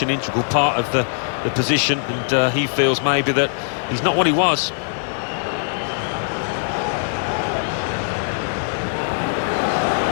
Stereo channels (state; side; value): silent; right; digital silence